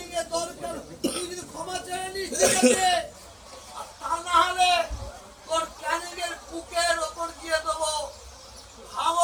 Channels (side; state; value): both; identical; correlation 1.00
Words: এ দরকার তুই যদি ক্ষমা চেয়ে নিস ঠিক আছে, আর তা না হলে তোর ক্যানিং এর বুকের ওপর দিয়ে দেবো,